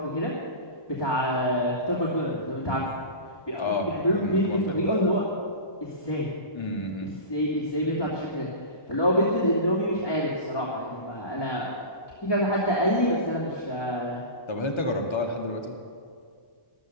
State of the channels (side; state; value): right; late; 1.2 ms